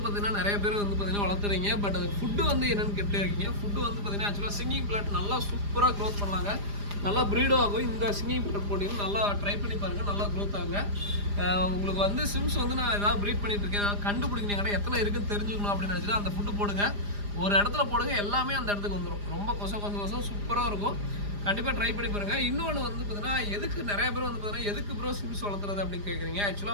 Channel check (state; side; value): late; left; 4.9 ms